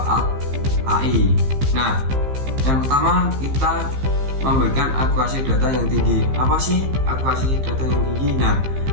AI. Nah, yang pertama kita memberikan akurasi data yang tinggi. Apa sih akurasi data yang tinggi? Nah,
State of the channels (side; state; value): left; late; 15 ms